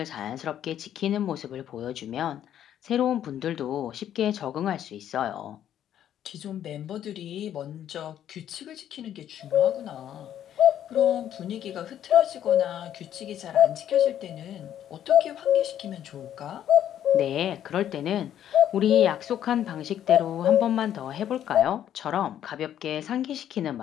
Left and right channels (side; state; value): right; quieter; 10.6 dB